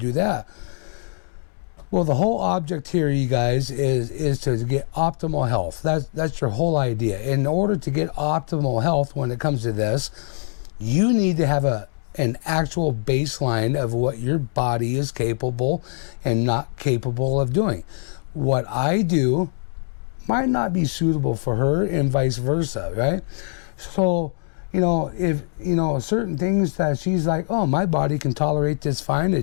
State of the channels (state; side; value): silent; right; digital silence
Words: that. Well, the whole object here, you guys, is to get optimal health. That's your whole idea. In order to get optimal health when it comes to this, you need to have an actual baseline of what your body is capable and not capable of doing. What I do might not be suitable for her and vice versa, right? So, if, certain things that she's like, oh, my body can tolerate this fine,